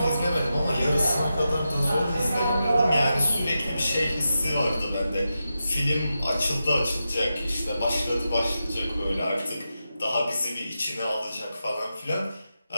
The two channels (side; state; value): both; inverted; correlation -0.89